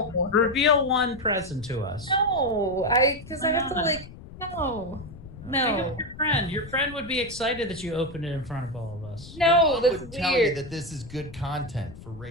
Yeah. Reveal one present to us. No. Because I have to, like, no. No. Your friend. Your friend would be excited that you opened it in front of all of us. No, that's would weird. Tell you that this is good content for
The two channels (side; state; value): left; noise; rumble, 16 dB below the sound